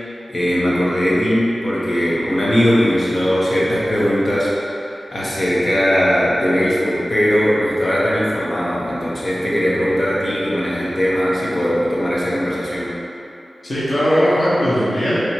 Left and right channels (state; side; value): normal; both; correlation 0.96